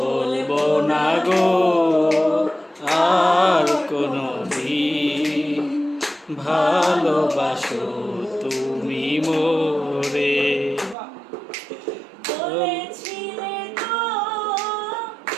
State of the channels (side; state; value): left; drops out; at 11.0 s